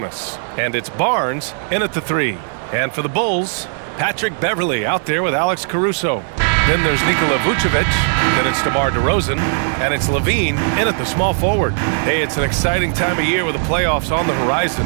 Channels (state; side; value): silent; left; digital silence